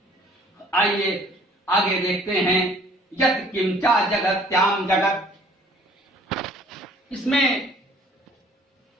आइए आगे देखते हैं। यत् किंचा जगत्याम जगत, इसमें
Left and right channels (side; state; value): both; normal; correlation 0.56